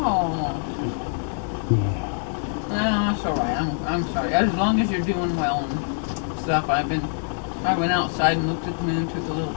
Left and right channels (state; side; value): silent; right; digital silence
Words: Yeah. No, that's alright. I'm sorry. As long as you're doing well and stuff, I went outside and looked at the moon, took a little